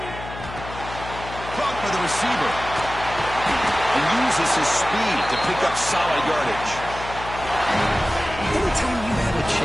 Caught by the receiver. And uses his speed to pick up solid yardage. Anytime you have a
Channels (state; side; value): noise; left; hum, 11 dB below the sound